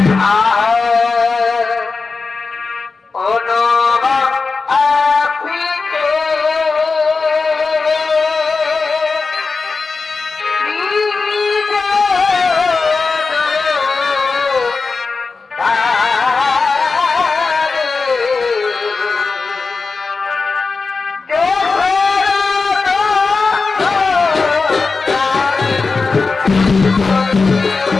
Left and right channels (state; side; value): quieter; right; 4.3 dB